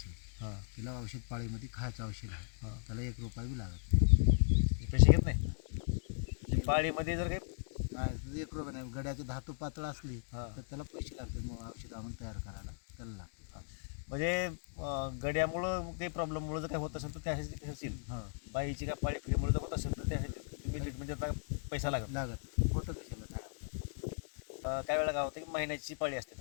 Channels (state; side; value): silent; right; digital silence